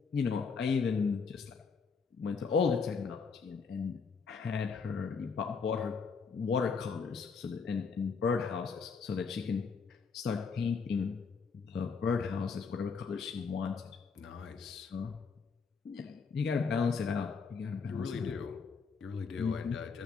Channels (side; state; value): right; quieter; 5.4 dB